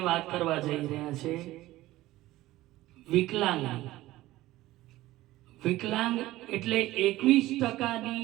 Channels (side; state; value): left; quieter; 16.7 dB